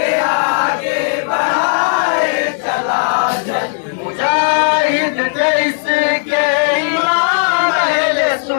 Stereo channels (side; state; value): right; silent; digital silence